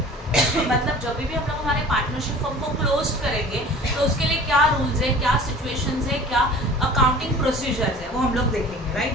मतलब जब भी हम लोग हमारे पार्टनरशिप फर्म को क्लोज करेंगे तो उसके लिए क्या रूल्स है, क्या सिचुएशंस है, क्या अकाउंटिंग प्रोसीजर्स है, वो हम लोग देखेंगे,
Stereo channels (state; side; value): normal; both; correlation 0.44